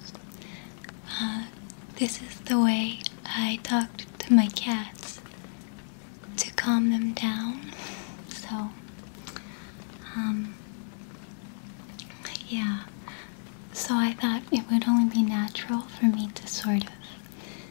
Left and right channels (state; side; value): silent; right; 58 dB below the other